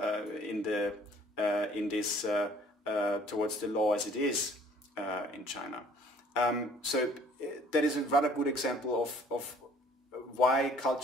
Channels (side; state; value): both; normal; correlation 0.56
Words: in this towards the law as it is in China. So that is a rather good example of why